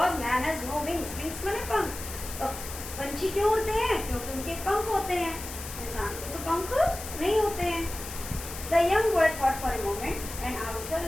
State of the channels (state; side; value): noise; left; hiss, 10 dB below the sound